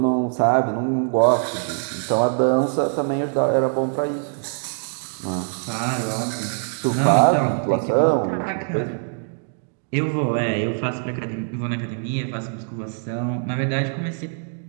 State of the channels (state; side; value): silent; left; 60 dB below the other